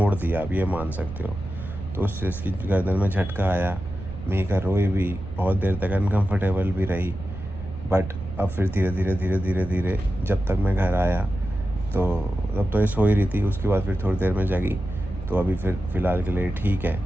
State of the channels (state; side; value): noise; right; rumble, 11 dB below the sound